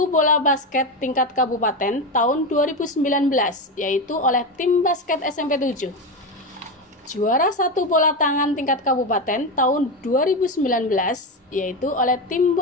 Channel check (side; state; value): both; normal; correlation 0.16